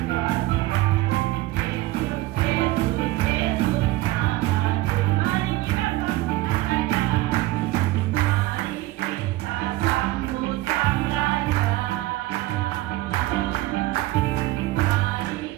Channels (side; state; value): left; quieter; 17.4 dB